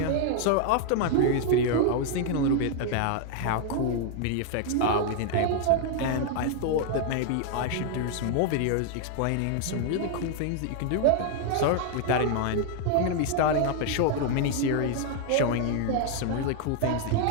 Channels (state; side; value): different; both; correlation 0.00